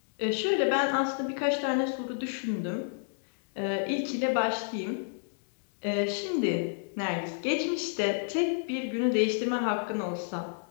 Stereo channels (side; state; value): right; silent; digital silence